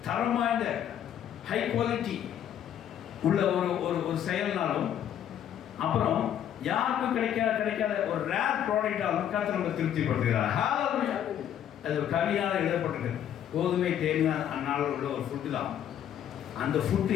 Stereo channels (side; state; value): right; quieter; 10.1 dB